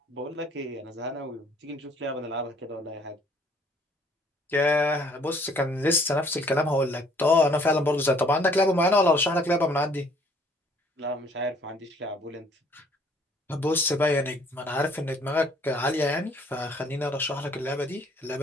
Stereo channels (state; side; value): normal; both; correlation 0.60